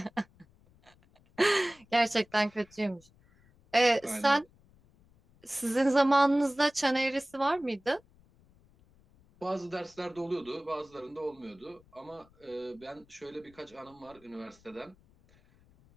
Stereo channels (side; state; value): left; noise; rumble, 29 dB below the sound